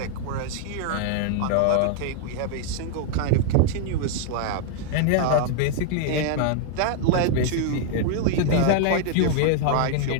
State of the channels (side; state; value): both; different; correlation 0.00